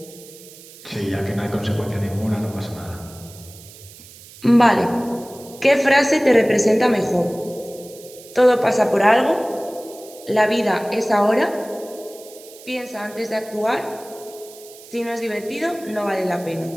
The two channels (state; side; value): noise; right; hiss, 20 dB below the sound